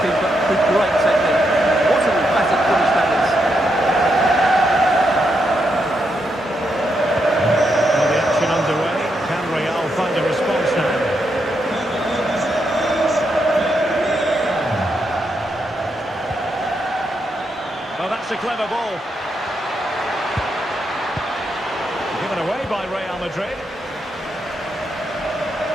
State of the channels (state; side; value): normal; both; correlation 0.81